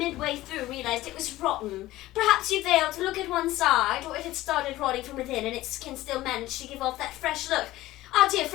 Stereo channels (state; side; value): quieter; right; 16.6 dB